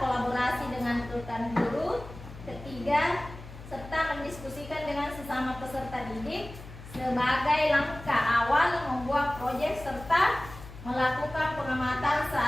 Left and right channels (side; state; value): left; noise; hum, 15 dB below the sound